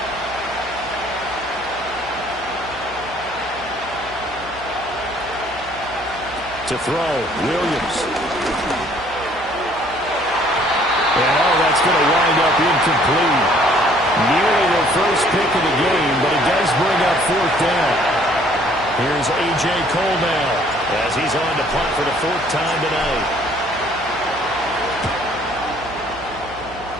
To throw, Williams. And that's going to wind up incomplete. Nearly their first pick of the game, but it does bring up fourth down. Here's A.J. Cole now as he's on to punt for the fourth time tonight.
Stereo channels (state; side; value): noise; right; hum, 19 dB below the sound